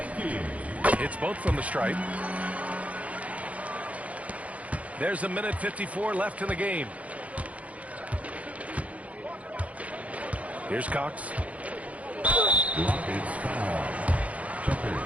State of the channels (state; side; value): late; left; 0.067 ms